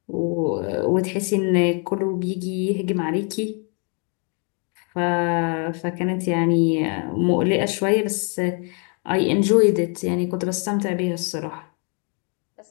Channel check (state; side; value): quieter; right; 38.1 dB